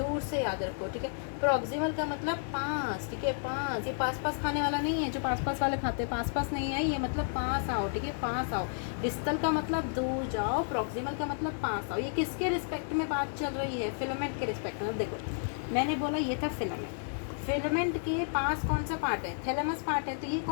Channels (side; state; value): right; silent; digital silence